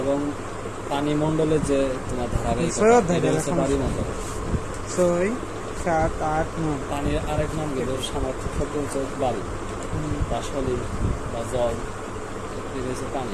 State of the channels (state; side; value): identical; both; correlation 1.00